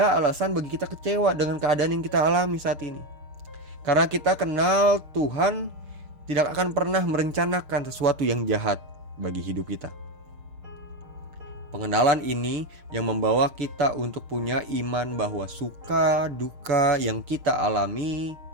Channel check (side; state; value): left; late; 6.6 ms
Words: alasan bagi kita kecewa dengan keadaan yang kita alami saat ini. Karena kita kenal Tuhan tidak akan pernah merencanakan sesuatu yang jahat bagi hidup kita. Pengenalan ini yang membawa kita untuk punya iman bahwa suka duka yang kita alami